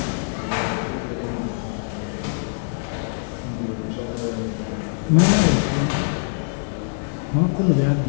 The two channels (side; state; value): right; silent; digital silence